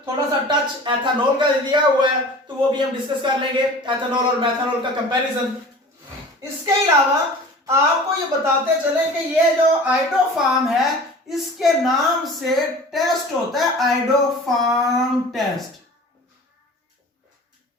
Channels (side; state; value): both; normal; correlation 0.41